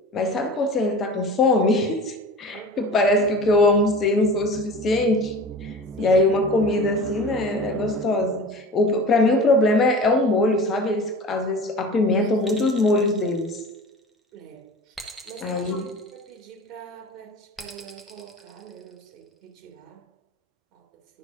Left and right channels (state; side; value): normal; both; correlation 0.37